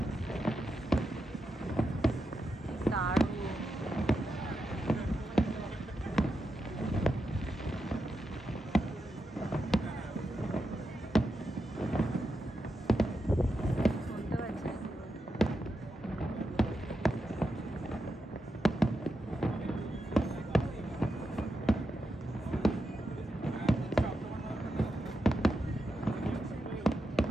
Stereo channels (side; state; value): both; normal; correlation 0.87